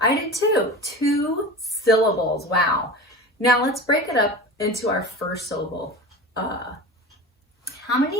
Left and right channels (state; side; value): normal; both; correlation 0.32